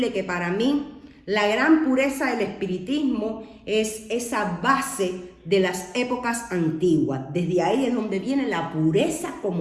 que para mí la gran pureza del espiritismo es esa base de las épocas antiguas. Desde ahí es donde viene la pureza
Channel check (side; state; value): both; identical; correlation 1.00